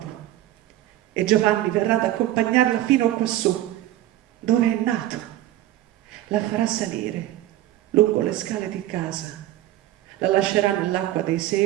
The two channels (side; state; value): left; quieter; 14.2 dB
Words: e Giovanni verrà ad accompagnarla fino quassù, dove è nato. La farà salire lungo le scale di casa, la lascerà nell'acqua dei